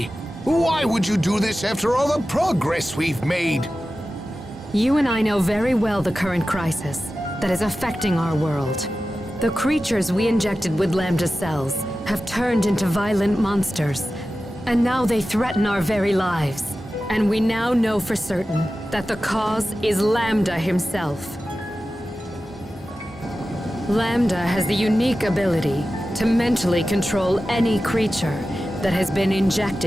Why would you do this after all the progress we've made? You and I know very well the current crisis that is affecting our world. The creatures we injected with Lambda cells have turned into violent monsters, and now they threaten our very lives. And we now know for certain that the cause is Lambda himself. Lambda has the unique ability to mentally control any creature that has been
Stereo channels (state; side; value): normal; both; correlation 0.94